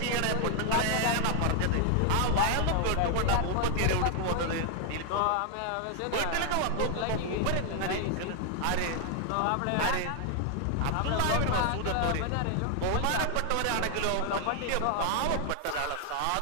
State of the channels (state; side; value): different; both; correlation 0.00